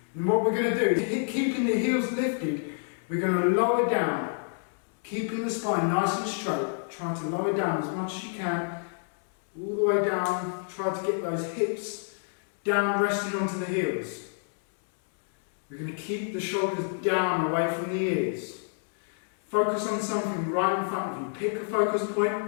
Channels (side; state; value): right; silent; 59 dB below the other